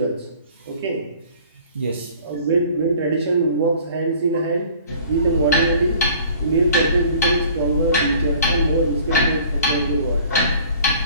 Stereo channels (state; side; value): inverted; both; correlation -0.50